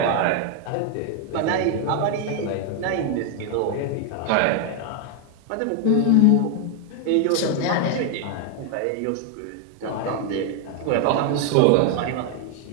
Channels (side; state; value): both; different; correlation 0.00